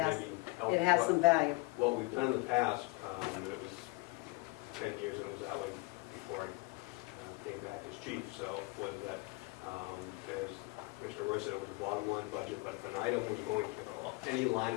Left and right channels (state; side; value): quieter; right; 25.3 dB